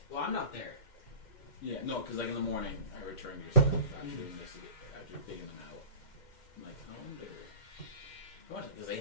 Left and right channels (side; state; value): right; late; 2.1 ms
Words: Well, I'm not there. Yeah, no, because like in the morning, I returned your stuff after taking them out. I'm like, I wonder. Because they